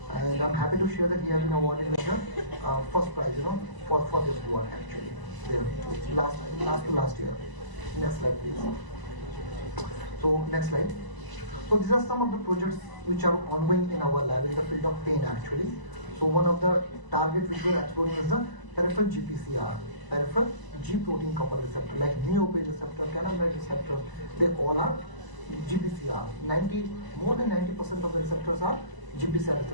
And I'm happy to share that he has been awarded with the first prize, for this work actually. There, last year. Next slide, please. So next slide. So these are some of the projects which are ongoing in our lab in the field of pain actually. So one of the targets which we are exploring is the peripheral GPCR, peripheral G protein coupled receptor, like neopage receptor, cannabinoid receptor. They all are GPCR. More than 90% of the receptors are GPCR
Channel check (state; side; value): late; left; 1.0 ms